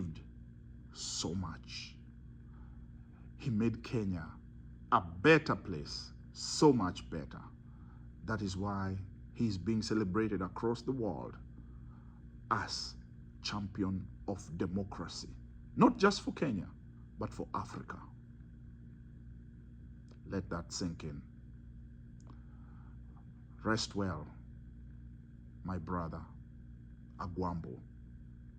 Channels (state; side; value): identical; both; correlation 1.00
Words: so much. He made Kenya a better place, so much better. That is why he's being celebrated across the world as champion of democracy. Not just for Kenya, but for Africa. Let that sink in. Rest well, my brother, Agwambo.